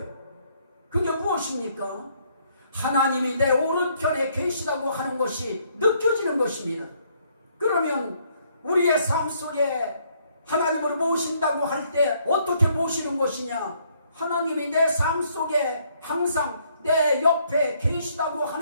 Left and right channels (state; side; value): inverted; both; correlation -0.68